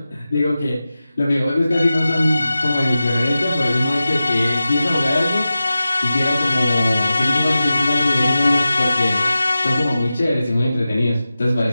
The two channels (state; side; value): inverted; both; correlation -0.94